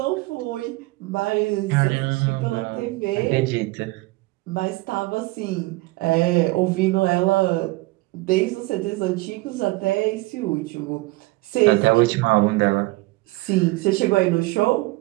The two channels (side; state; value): left; quieter; 21.7 dB